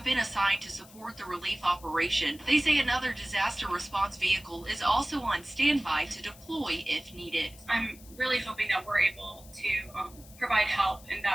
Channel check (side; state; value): left; noise; hiss, 22 dB below the sound